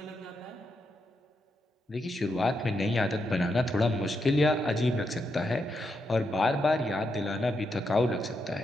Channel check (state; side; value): normal; both; correlation 0.83